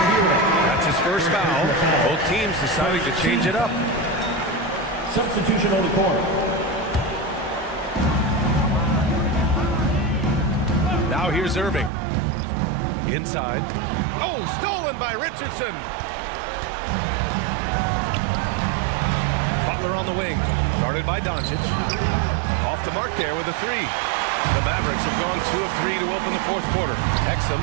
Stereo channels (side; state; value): left; drops out; at 11.9 s